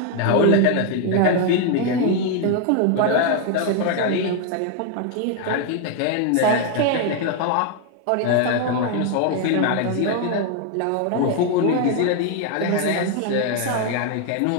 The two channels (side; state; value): both; different; correlation 0.01